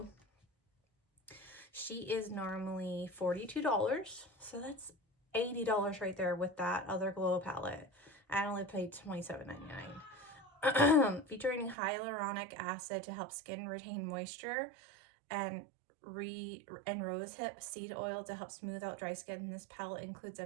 she is normally $42. So that's $80 right there with that other glow palette. I only paid $27.99. Featuring hyaluronic acid to help skin retain moisture, and rosehip seed oil to help smooth out dry skin. This palette includes a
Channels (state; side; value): drops out; left; at 11.8 s